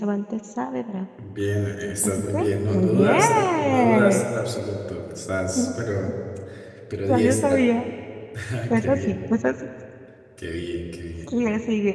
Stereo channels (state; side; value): identical; both; correlation 1.00